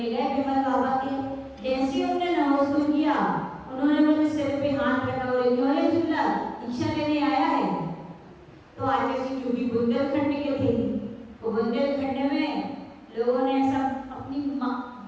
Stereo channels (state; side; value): identical; both; correlation 1.00